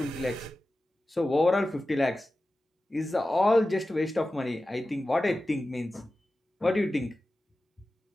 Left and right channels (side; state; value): both; normal; correlation 0.94